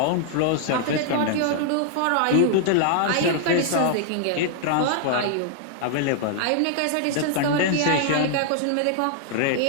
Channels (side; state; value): both; different; correlation -0.01